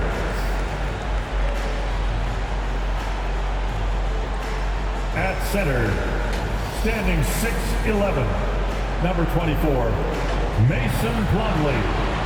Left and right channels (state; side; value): identical; both; correlation 1.00